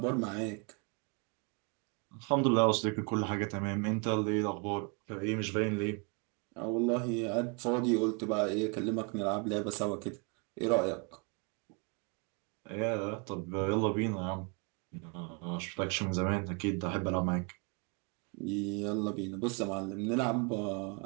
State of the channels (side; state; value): left; quieter; 34.0 dB